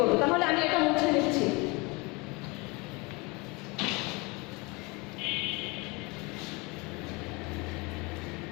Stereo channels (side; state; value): right; quieter; 26.6 dB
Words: তাহলে আমি এটা মুছে নিচ্ছি।